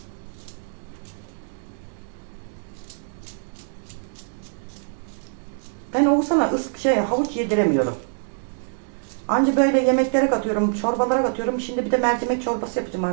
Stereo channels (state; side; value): silent; left; digital silence